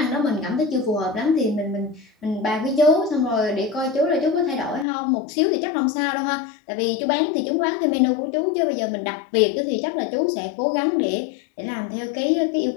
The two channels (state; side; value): drops out; right; at 4.9 s